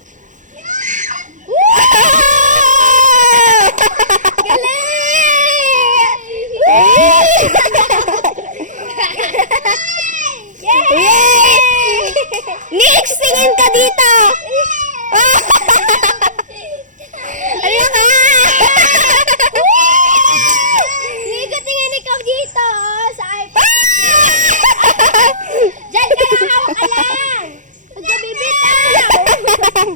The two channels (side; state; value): left; late; 0.37 ms